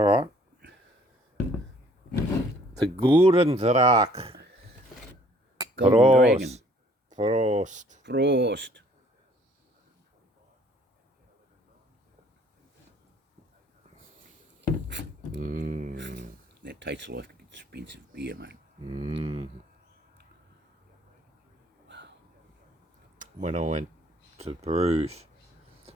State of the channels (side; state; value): both; normal; correlation 0.59